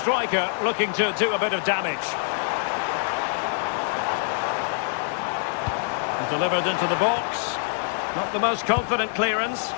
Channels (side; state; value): right; silent; digital silence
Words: looking to do a bit of damage. And delivered into the box. Not the most confident clearance.